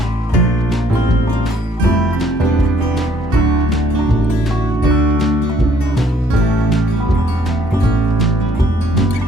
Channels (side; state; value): both; normal; correlation 0.63